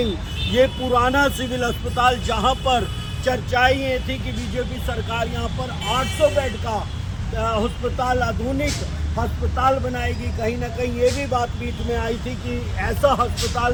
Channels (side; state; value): both; identical; correlation 1.00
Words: ये पुराना सिविल अस्पताल जहाँ पर चर्चाएं ये थी कि बीजेपी सरकार यहाँ पर 800 बेड का अस्पताल, आधुनिक अस्पताल बनाएगी। कहीं ना कहीं ये भी बात बीच में आई थी कि ऐसा अस्पताल,